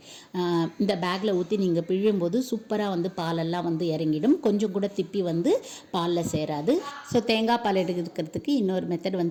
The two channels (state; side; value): identical; both; correlation 1.00